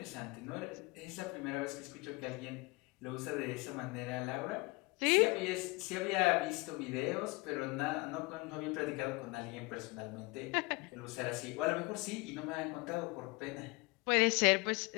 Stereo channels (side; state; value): right; quieter; 25.8 dB